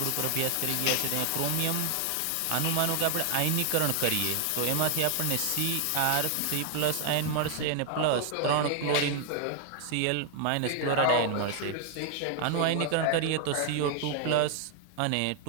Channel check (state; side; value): different; both; correlation 0.00